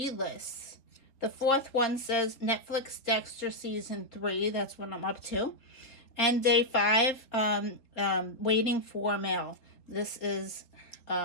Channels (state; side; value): late; right; 3.6 ms